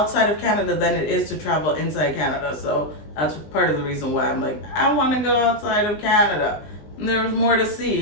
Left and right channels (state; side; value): late; right; 20 ms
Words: of Canada than it is to travel inside Canada. So that's part of the reason why I'm like, I want to go outside of Canada. And there's more to